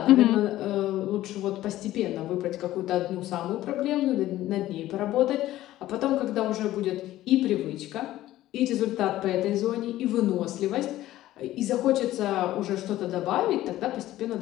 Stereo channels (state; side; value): quieter; right; 14.8 dB